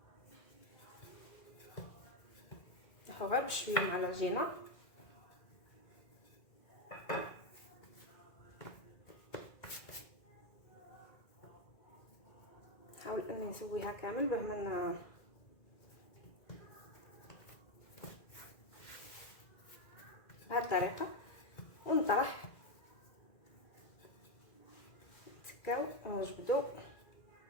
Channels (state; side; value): late; right; 2.0 ms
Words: نحو غير بشويه مع العجينه نحاول اني نسويها كامل بهما بهذه الطريقه ونطرح نتكاو ونجبدو.